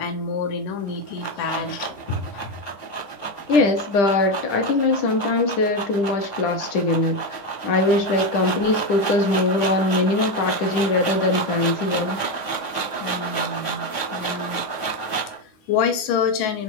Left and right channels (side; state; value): right; late; 9.3 ms